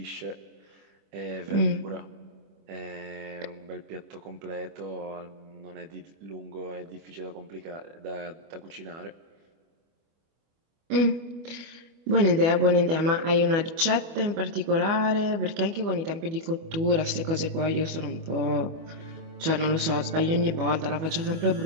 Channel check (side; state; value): left; late; 25 ms